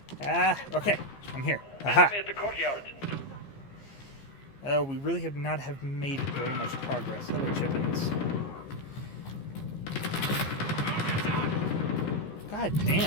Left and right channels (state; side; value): late; right; 15 ms